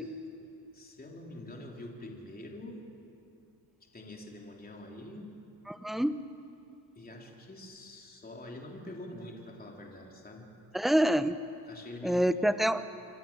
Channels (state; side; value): normal; both; correlation 0.90